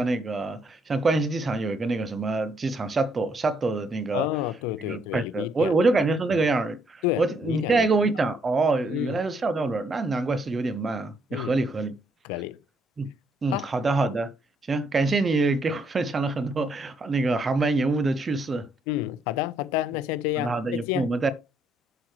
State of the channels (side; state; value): both; normal; correlation 0.71